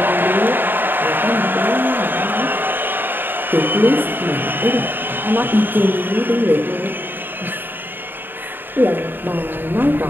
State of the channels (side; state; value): left; late; 0.094 ms